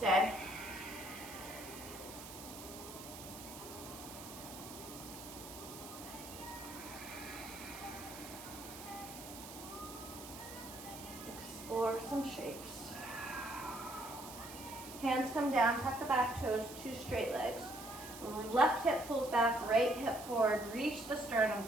Explore some shapes. Hands come down, tuck the back toes, two straight legs. Left hip pulls back, right hip forward, reach the sternum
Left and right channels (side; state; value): right; noise; hiss, 13 dB below the sound